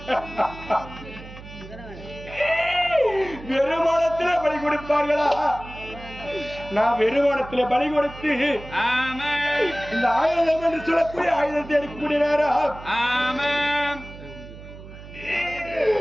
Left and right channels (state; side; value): noise; right; hum, 15 dB below the sound